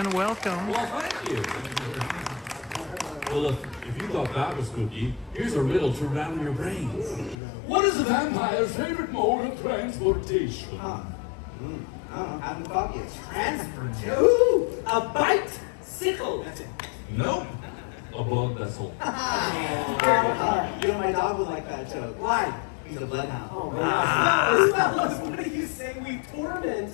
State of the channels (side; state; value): right; drops out; at 7.4 s